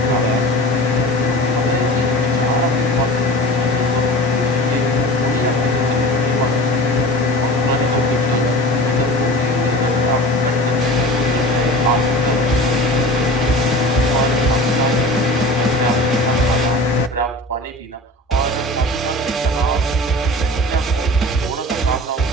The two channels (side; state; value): both; normal; correlation 0.36